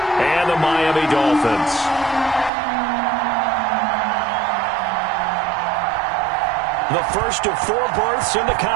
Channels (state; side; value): drops out; left; at 2.5 s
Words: and the Miami Dolphins. The first of 4 berths in the